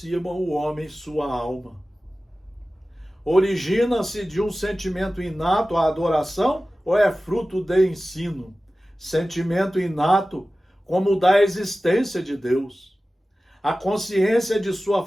o homem sua alma. Origina-se de um sentimento inato a adoração ou é fruto de ensino? Sentimento inato como o da existência de Deus. A consciência de sua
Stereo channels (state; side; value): normal; both; correlation 0.96